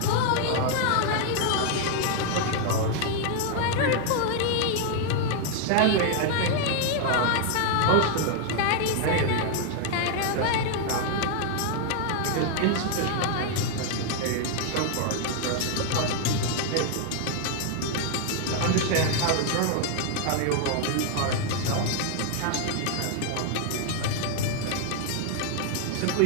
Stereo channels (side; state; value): both; different; correlation 0.00